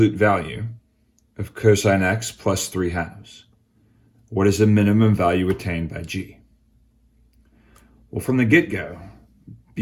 value of cosine x plus 3/2. What is the minimum value attained by g? Well, from the get-go,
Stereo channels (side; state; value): both; identical; correlation 1.00